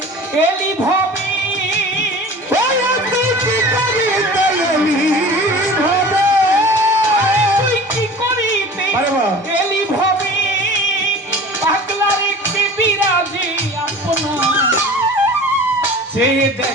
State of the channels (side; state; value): both; normal; correlation 0.40